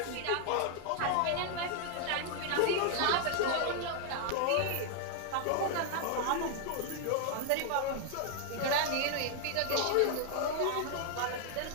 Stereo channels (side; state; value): both; different; correlation 0.00